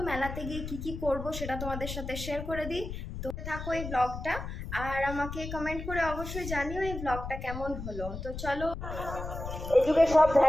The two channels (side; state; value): left; noise; rumble, 7 dB below the sound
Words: মেলাতে গিয়ে কি করব সেটা তোমাদের সাথে শেয়ার করে দিই। তো থাকো এই ব্লগটা আর আমাকে কমেন্ট করে অবশ্যই জানিও এই ব্লগটা কেমন হলো। তো চলো। এই যুগে সব